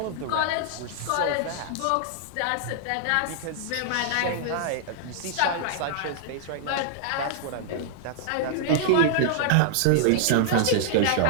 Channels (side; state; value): both; different; correlation -0.01